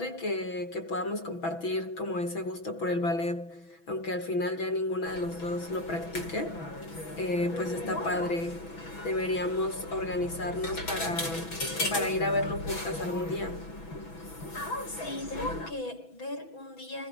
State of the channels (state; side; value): late; right; 6.1 ms